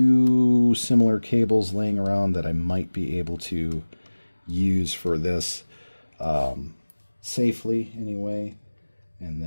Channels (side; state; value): both; inverted; correlation -1.00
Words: similar cables laying around that I might be able to use for this safely anyway, and